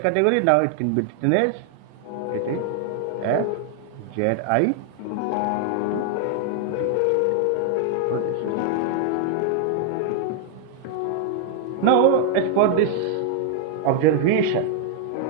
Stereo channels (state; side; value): different; both; correlation 0.00